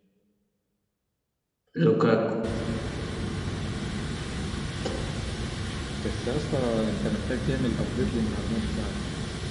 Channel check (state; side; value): identical; both; correlation 1.00